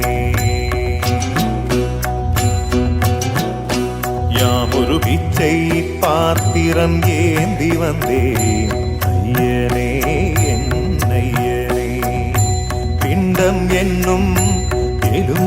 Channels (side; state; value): both; identical; correlation 1.00